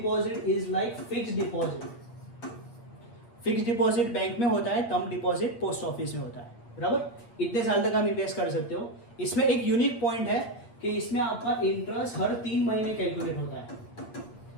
is like fixed deposit. Fixed deposit bank में होता है, टर्म डिपॉजिट पोस्ट ऑफिस में होता है, बराबर. इतने साल तक आप इन्वेस्ट कर सकते हो. इसमें एक यूनिक पॉइंट है कि इसमें आपका इंटरेस्ट हर 3 महीने कैलकुलेट होता है.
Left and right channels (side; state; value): right; late; 8.5 ms